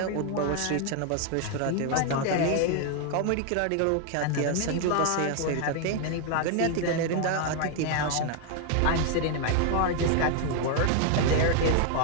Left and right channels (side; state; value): both; different; correlation 0.00